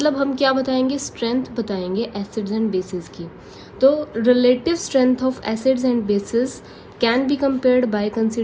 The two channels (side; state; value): both; identical; correlation 1.00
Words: हम क्या बताएंगे, स्ट्रेंथ बताएंगे एसिड्स एंड बेसिस की। तो relative strength of acids and bases can be compared by